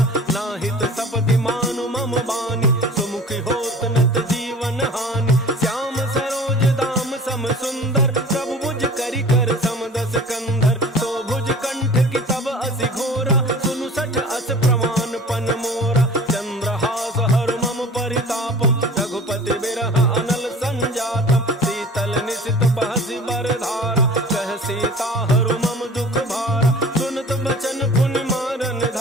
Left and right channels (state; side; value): normal; both; correlation 0.43